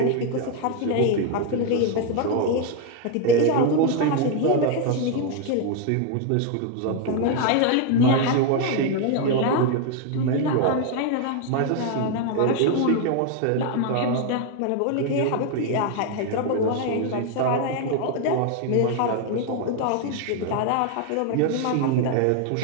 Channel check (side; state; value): both; different; correlation 0.01